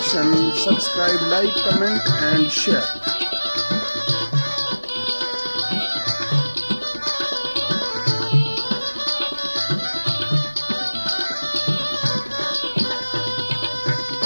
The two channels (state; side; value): inverted; both; correlation -1.00